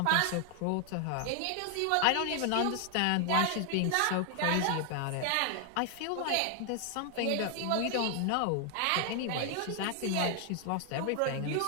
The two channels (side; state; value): both; different; correlation 0.00